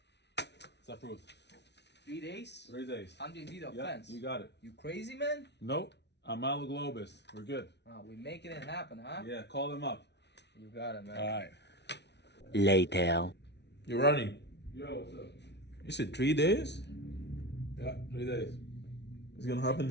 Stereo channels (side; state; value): right; late; 0.50 ms